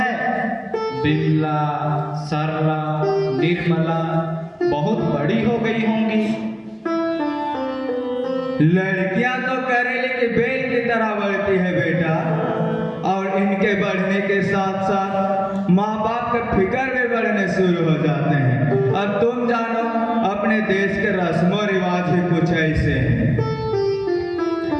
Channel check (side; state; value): both; identical; correlation 1.00